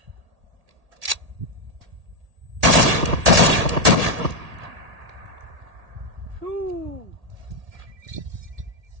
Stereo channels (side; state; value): left; late; 1.8 ms